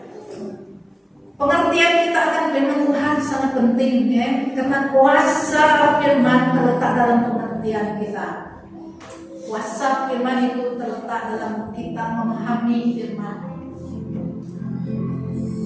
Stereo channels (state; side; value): identical; both; correlation 1.00